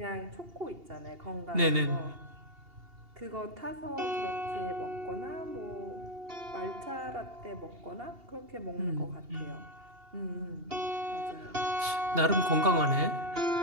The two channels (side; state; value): left; late; 2.8 ms